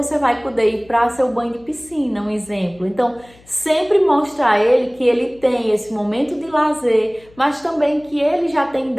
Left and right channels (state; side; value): noise; left; hum, 27 dB below the sound